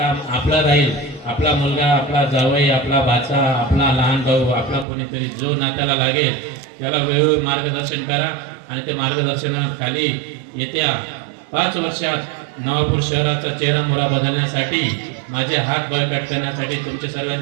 आपलं राहील. आपला मुलगा, आपला जावई, आपला भाचा, आपला लहान भाऊ, आपला कोणीतरी जो नात्याला लागेल त्याला वेळोवेळी मार्गदर्शन करा आणि ते मार्गदर्शनाखाली येत्या 5 वर्षात नवापूर शहराचा चेहरा मोहरा बदलण्यासाठी, माझे हात बळकट करण्यासाठी तुमचे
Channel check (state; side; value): drops out; left; at 4.9 s